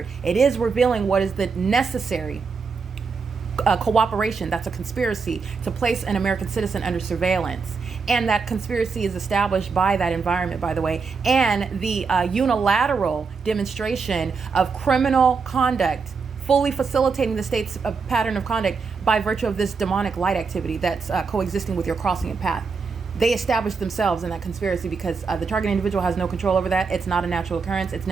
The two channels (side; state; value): left; quieter; 5.1 dB